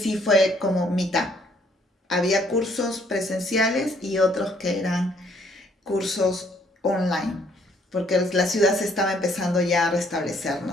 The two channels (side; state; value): both; normal; correlation 0.65